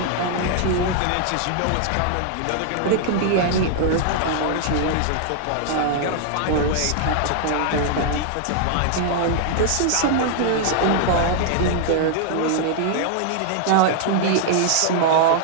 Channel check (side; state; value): both; different; correlation 0.00